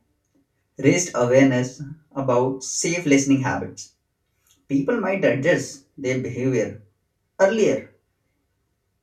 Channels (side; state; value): both; identical; correlation 1.00